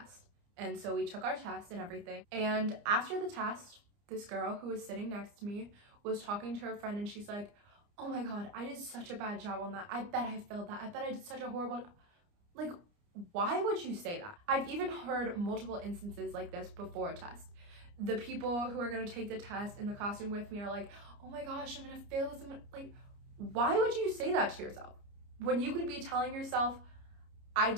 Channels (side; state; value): left; late; 29 ms